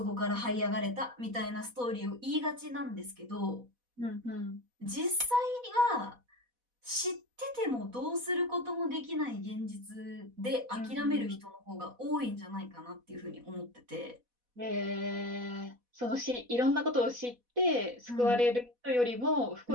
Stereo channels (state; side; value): late; left; 4.1 ms